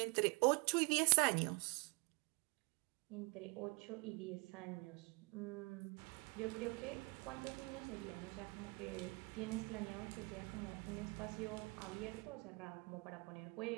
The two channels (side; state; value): left; quieter; 29.4 dB